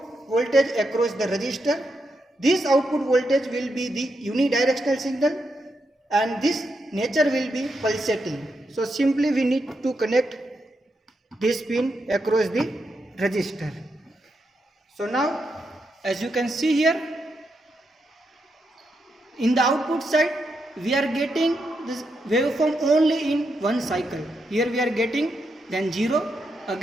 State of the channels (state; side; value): normal; both; correlation 0.83